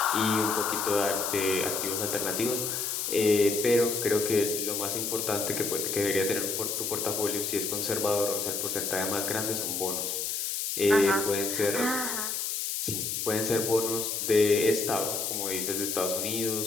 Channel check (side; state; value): left; noise; hiss, 2 dB below the sound